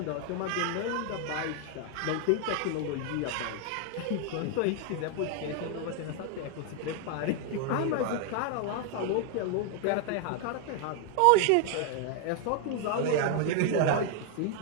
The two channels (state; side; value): different; both; correlation 0.00